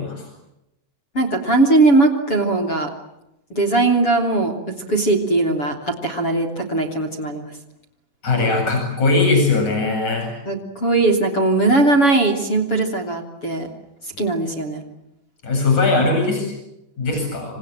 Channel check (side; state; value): right; late; 7.1 ms